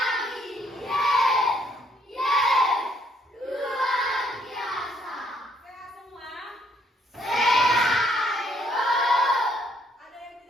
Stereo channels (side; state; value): both; normal; correlation 0.68